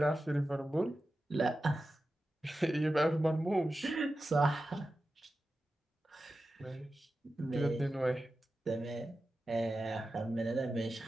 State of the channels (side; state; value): both; normal; correlation 0.93